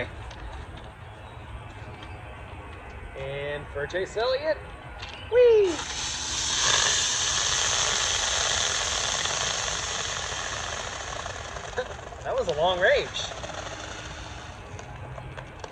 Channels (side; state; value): both; identical; correlation 1.00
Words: And for Chase Elliott, whee! That was a long range.